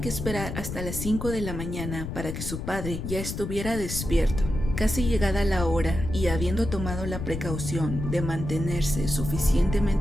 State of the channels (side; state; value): left; noise; rumble, 6 dB below the sound